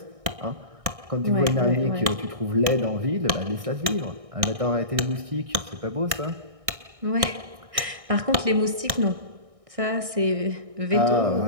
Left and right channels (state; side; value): late; left; 1.6 ms